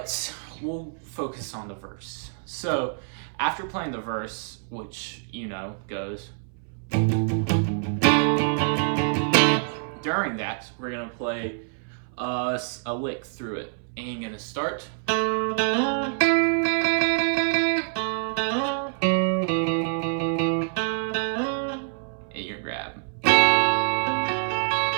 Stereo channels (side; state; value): left; silent; 61 dB below the other